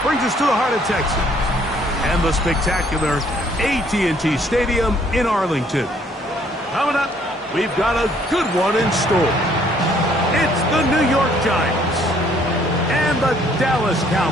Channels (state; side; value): normal; both; correlation 0.63